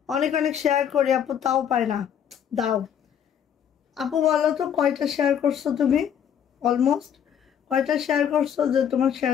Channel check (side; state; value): right; quieter; 8.8 dB